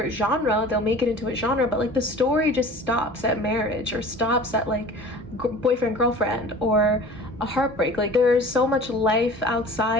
genre. They'll make it into a genre, but like the story just stops at marriage, or stops at like boyfriend girlfriend or a heartbreak. Like there's so much life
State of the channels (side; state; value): both; normal; correlation 0.42